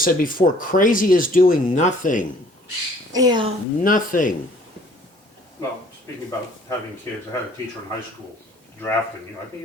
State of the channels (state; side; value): normal; both; correlation 0.56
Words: before, crazy is doing nothing. Yeah. Nothing. Well, speaking about having kids, I had a teacher in high school drafting, I think